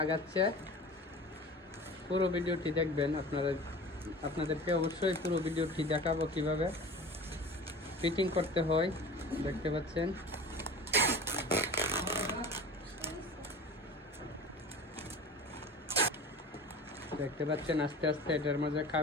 আগাচ্ছে। পুরো ভিডিওটি দেখবেন, আপনাদেরকে অবশ্যই পুরো ভিডিওটি দেখাবো কিভাবে ফিটিং করতে হয়। দেখতে পাচ্ছেন আস্তে আস্তে এটার মাঝে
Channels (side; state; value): both; normal; correlation 0.37